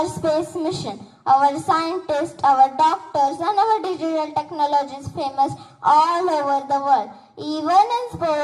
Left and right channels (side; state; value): both; identical; correlation 1.00